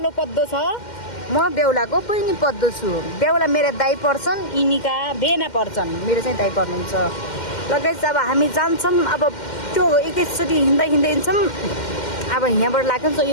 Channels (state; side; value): late; right; 2.1 ms